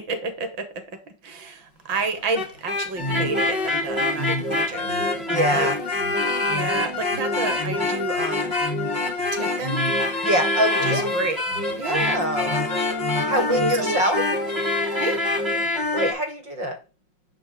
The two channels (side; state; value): left; late; 5.5 ms